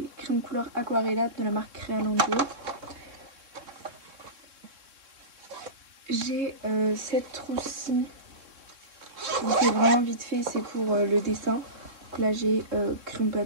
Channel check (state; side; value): late; left; 3.6 ms